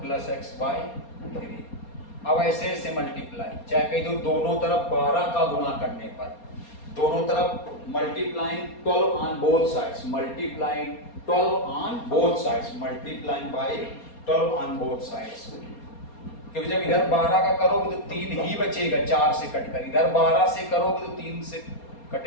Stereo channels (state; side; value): late; right; 4.3 ms